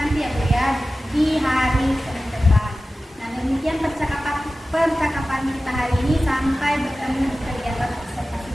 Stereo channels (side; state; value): both; normal; correlation 0.95